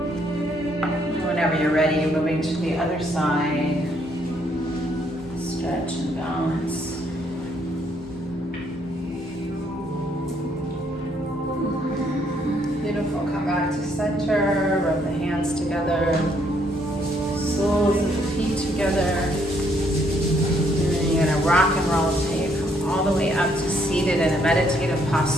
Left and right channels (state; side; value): normal; both; correlation 0.70